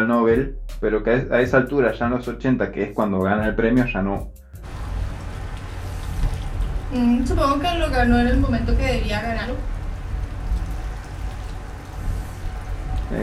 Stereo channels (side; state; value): both; identical; correlation 1.00